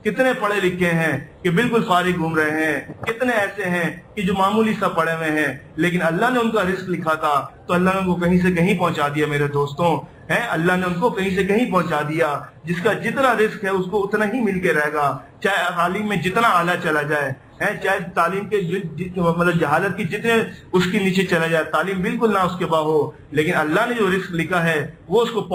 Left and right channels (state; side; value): identical; both; correlation 1.00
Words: کتنے پڑھے لکھے ہیں کہ بالکل فارغ گھوم رہے ہیں، کتنے ایسے ہیں کہ جو معمولی سا پڑھے ہوئے ہیں لیکن اللہ نے ان کا رزق لکھا تھا تو اللہ نے ان کو کہیں سے کہیں پہنچا دیا۔ میرے دوستوں اللہ نے ان کو کہیں سے کہیں پہنچا دیا، جس کا جتنا رزق ہے اس کو اتنا ہی مل کے رہے گا، چاہے تعلیم میں جتنا اعلیٰ چلا جائے، چاہے تعلیم کے مطلب جہالت کی جتنے اس کے نیچے چلا جائے، تعلیم بالکل نہ اس کے باہو، لیکن اللہ نے جو رزق لکھا ہے وہ اس کو